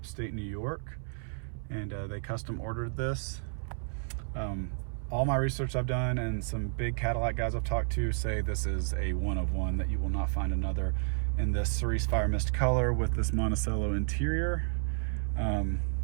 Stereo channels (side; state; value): left; silent; 57 dB below the other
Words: New York, and they custom ordered this. All my research I've done and some big Cadillac guys I've talked to say this is a one of one, that you will not find another in this Cerise Fire Mist color with this Monticello interior.